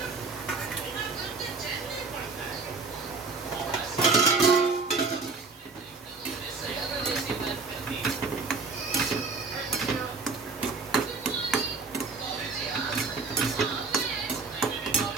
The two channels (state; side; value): quieter; left; 4.3 dB